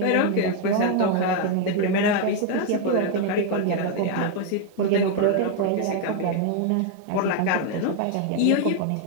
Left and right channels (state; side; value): different; both; correlation 0.01